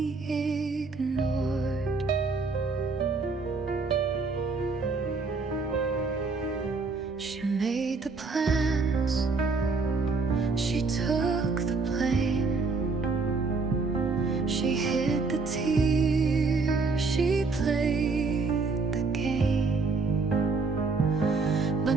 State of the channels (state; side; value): quieter; left; 4.1 dB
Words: ignored. She made the plans, she took the blame. She hid the tears, she played the game. But